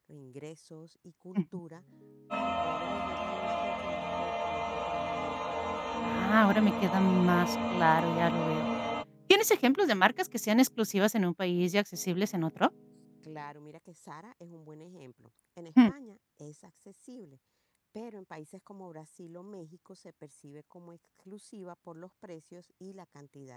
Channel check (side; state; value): both; identical; correlation 1.00